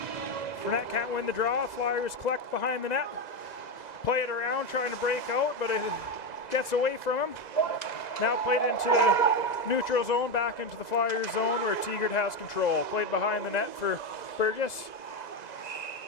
Fournette can't win the draw. Flyers collect behind the net. Play it around, trying to break out, but it gets away from him. Now played into the neutral zone, back into the Flyers zone where Tegart has control. Played behind the net for Burgess.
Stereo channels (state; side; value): late; right; 2.0 ms